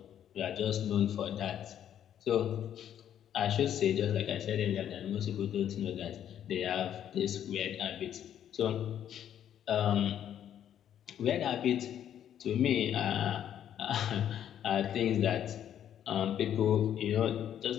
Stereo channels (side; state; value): right; quieter; 10.1 dB